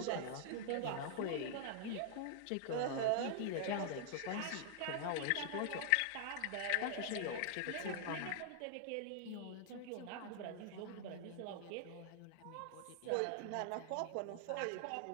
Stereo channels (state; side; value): different; both; correlation -0.01